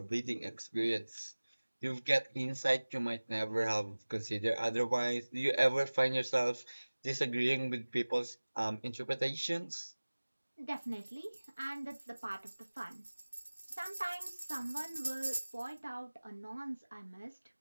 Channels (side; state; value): both; inverted; correlation -1.00